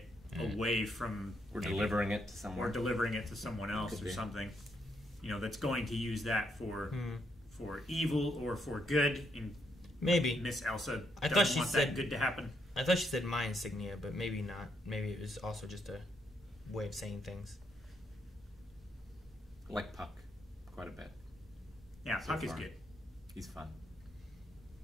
away from, We're delivering it to or someone. delivering it to someone else Could or be. something. You know, that's going to use that for evil or for good. And Maybe. Miss Elsa I doesn't thought she want said- that good to happen. I thought she said my insignia, but maybe not. Maybe it was also just a way of saying things. I like Puck quite a bit. Yeah, So Puck is far. good. He's fun.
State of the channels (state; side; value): normal; both; correlation 0.76